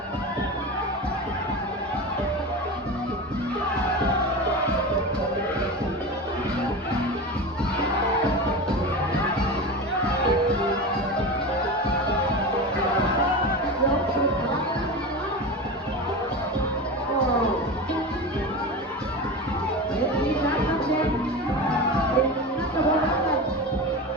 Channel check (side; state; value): both; normal; correlation 0.26